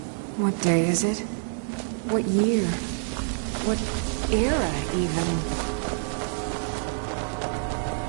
What day is it? What year? What era, even?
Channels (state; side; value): silent; left; 60 dB below the other